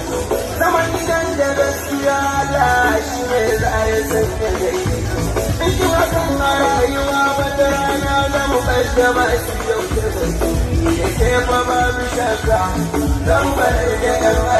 zaman gidan da gaskiya Allah shi ne za ya sanya gari in ki wasan a rayuwa wata rana za mu kaddama shi yau da gaske ya ke fa babu shakka zan bar da yan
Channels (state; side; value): identical; both; correlation 1.00